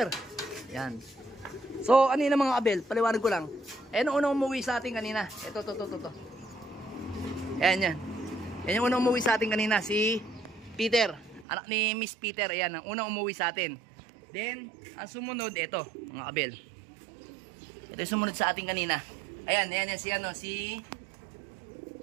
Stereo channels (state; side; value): drops out; left; at 11.5 s